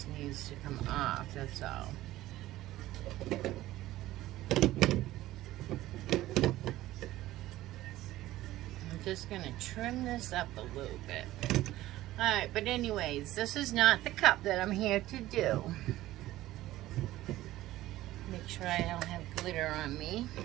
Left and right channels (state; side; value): quieter; left; 15.7 dB